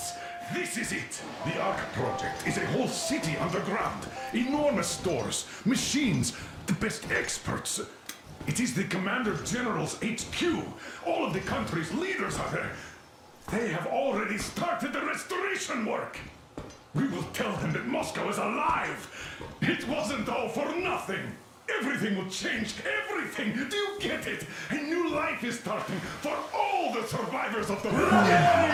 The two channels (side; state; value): both; identical; correlation 1.00